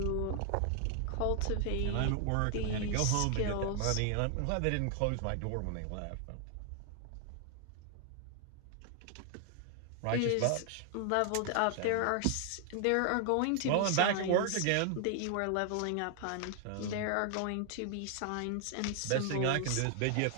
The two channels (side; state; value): both; different; correlation 0.00